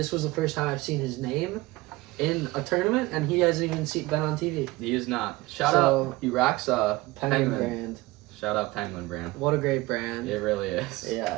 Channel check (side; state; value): left; quieter; 20.7 dB